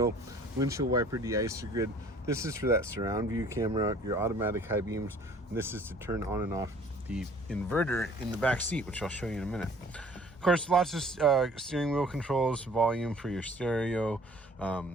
windshield wiper de-icer grid. This is for that surround view camera, your automatic high beams, and this is to turn on and off the inverter in the back seat, which I'll show you in a minute. Of course, lots of steering wheel controls, volume for your stereo,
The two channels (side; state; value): both; normal; correlation 0.53